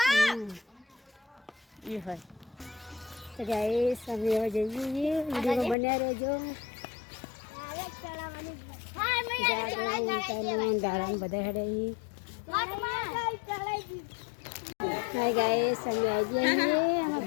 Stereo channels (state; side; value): drops out; right; at 5.8 s